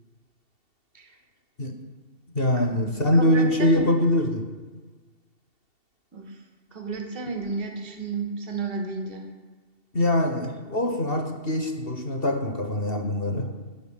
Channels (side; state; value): right; late; 2.7 ms